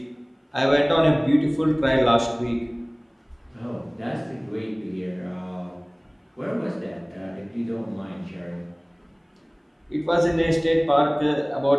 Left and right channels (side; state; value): both; identical; correlation 1.00